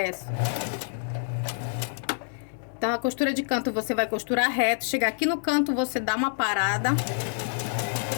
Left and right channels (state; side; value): silent; right; digital silence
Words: Então, a costura de canto você vai costurar reto. Chegar aqui no canto, você dá uma parada.